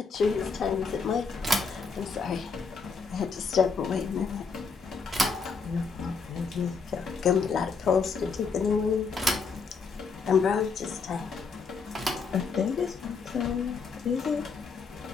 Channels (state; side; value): quieter; right; 4.9 dB